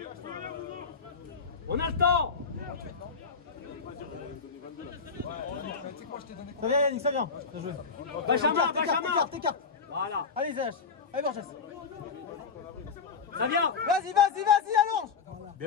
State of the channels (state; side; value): quieter; right; 5.3 dB